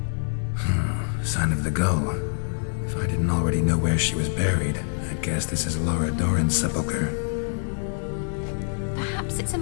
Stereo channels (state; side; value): silent; right; digital silence